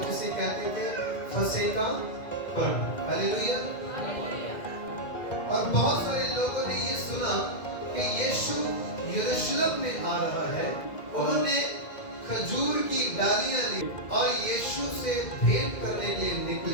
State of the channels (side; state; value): right; late; 2.1 ms